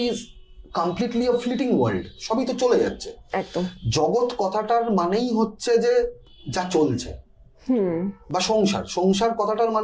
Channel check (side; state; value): both; identical; correlation 1.00